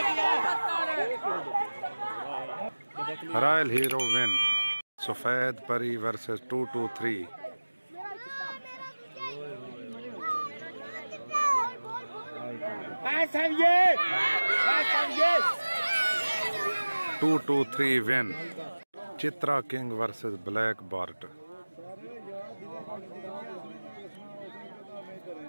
Royal Hero win. Safed Pari versus 223. 223 win. Chitra King versus Black Bart.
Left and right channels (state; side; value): inverted; both; correlation -1.00